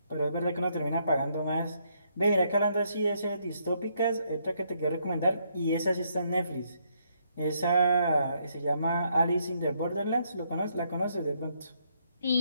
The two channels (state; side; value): inverted; both; correlation -0.73